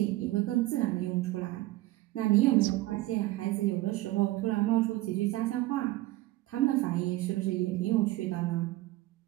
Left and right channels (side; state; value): left; quieter; 17.5 dB